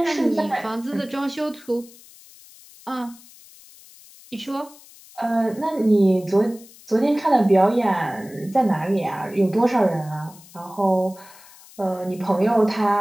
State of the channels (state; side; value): noise; left; hiss, 22 dB below the sound